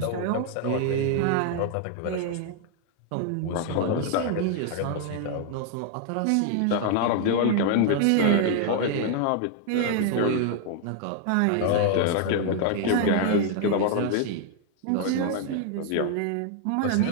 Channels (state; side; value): different; both; correlation 0.00